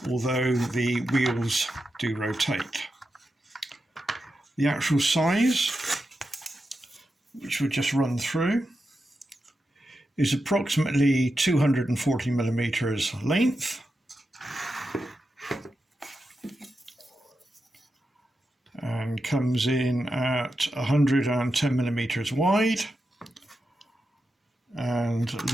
although the wheels do rotate. The actual size, which we'll just run through, is approximately 240mm length and comes in at 110mm wide and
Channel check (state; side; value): normal; both; correlation 0.88